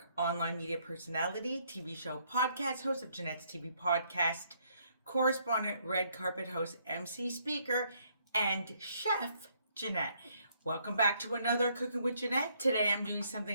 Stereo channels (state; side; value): inverted; both; correlation -0.69